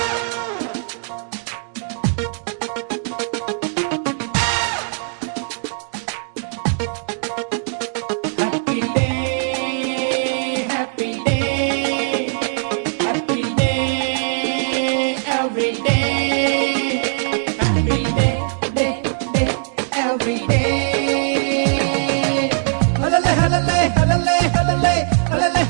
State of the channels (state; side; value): silent; left; digital silence